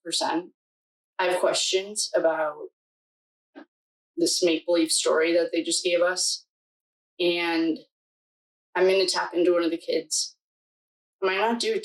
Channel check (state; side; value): identical; both; correlation 1.00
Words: I have questions about this make-believe story that they just gave us. And I'm going to tap into one of the kids. I might not do it